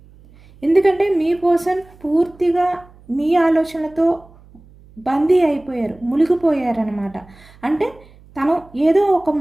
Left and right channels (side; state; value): right; noise; hum, 25 dB below the sound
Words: ఎందుకంటే మీ పర్సన్ పూర్తిగా మీ ఆలోచనలతో బందీ అయిపోయారు, మునిగిపోయారనమాట. అంటే తను ఏదో ఒక